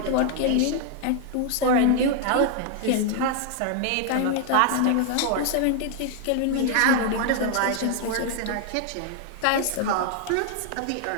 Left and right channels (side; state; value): both; different; correlation 0.00